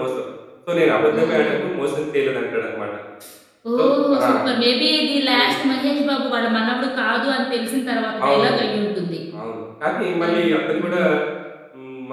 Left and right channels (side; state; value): both; identical; correlation 1.00